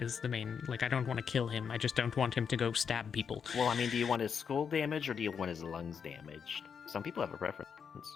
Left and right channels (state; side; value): quieter; right; 6.8 dB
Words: the main, like, I don't want to kill him. I just don't want him to go stab people. Well, I mean, do you want his skull damaged or do you want his lungs damaged? Some people have a preference.